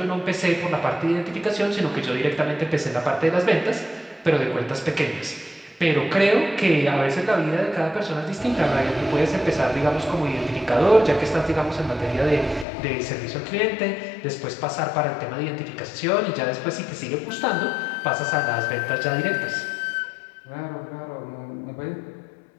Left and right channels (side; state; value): right; drops out; at 12.7 s